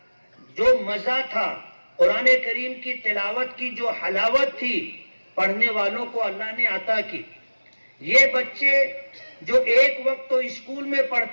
جو مزہ تھا، قرآن کریم کی تلاوت کی جو حلاوت تھی، پڑھنے والوں کو اللہ نے عطا کی۔ یہ بچے جو ایک وقت تو اسکول میں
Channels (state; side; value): inverted; both; correlation -1.00